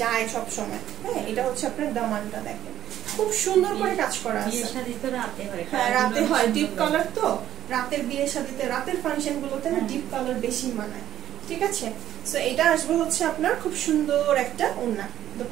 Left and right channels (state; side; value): quieter; left; 11.7 dB